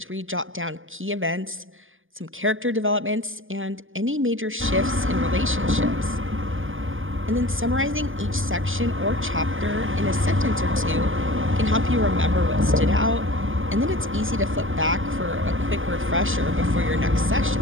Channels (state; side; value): late; left; 0.58 ms